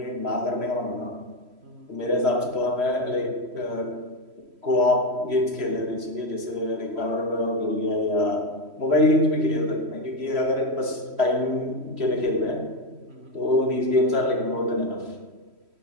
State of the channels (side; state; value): left; late; 3.1 ms